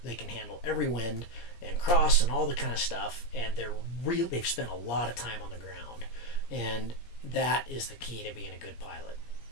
They can handle every wind and cross and all the kind of stuff, and they've spent a lot of time on the ground, and that is the key to being a good pilot,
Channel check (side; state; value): right; late; 17 ms